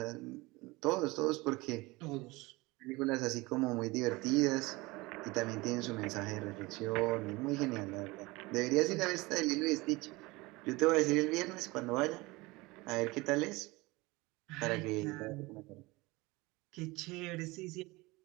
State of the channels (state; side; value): quieter; left; 22.6 dB